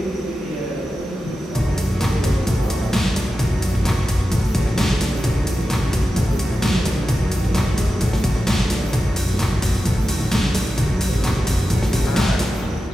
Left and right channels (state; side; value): normal; both; correlation 0.92